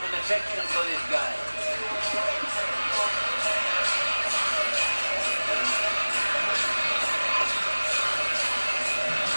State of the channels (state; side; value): inverted; both; correlation -1.00